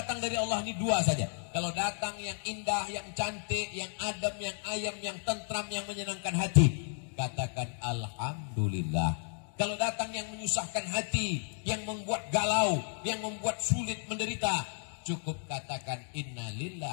dari Allah ini dua saja. Kalau datang yang indah, yang cantik, yang adem, yang ayam, yang tentram, yang menyenangkan hati, katakan alhamdulillah. Kalau datang yang menyusahkan hati, yang membuat galau, yang membuat sulit menderita, cukup katakan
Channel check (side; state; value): right; silent; digital silence